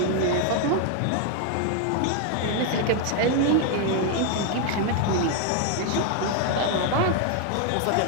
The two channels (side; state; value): both; different; correlation 0.01